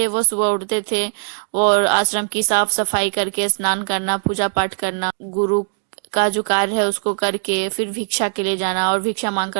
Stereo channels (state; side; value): silent; left; digital silence